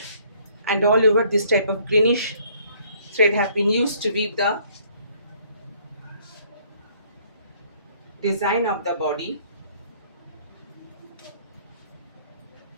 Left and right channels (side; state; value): both; inverted; correlation -0.61